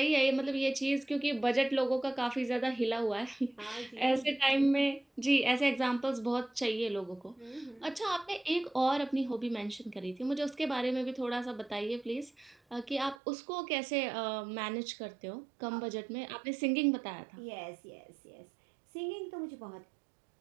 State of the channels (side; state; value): left; drops out; at 13.2 s